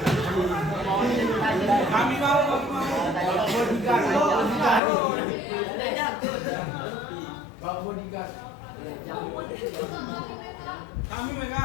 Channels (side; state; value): right; drops out; at 4.8 s